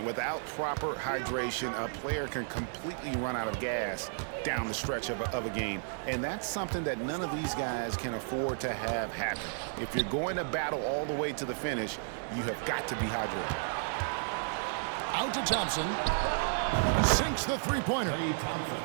Without proper hydration, a player can completely run out of gas down the stretch of a game. And that's something that none of these guys can afford to have happen. If you're going to battle all the way to the finish, you have got to be hydrated. Out to Thompson. Sinks the three-pointer.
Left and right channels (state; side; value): silent; left; digital silence